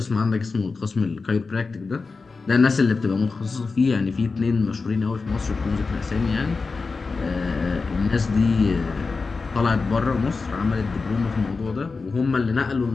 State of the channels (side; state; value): right; quieter; 4.3 dB